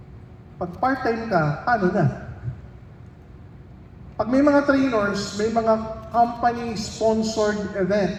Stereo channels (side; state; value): both; identical; correlation 1.00